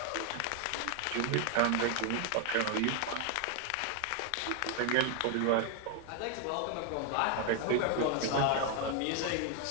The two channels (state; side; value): different; both; correlation 0.00